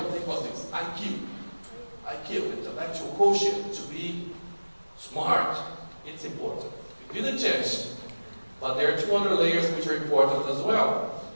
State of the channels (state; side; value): inverted; both; correlation -1.00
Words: thing was this, IQ. IQ, intellectual quotient, to be smart. It's important. You didn't change. But there are two other layers which are important as well.